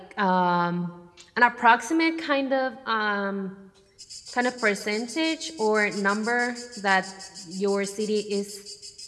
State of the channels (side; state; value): both; identical; correlation 1.00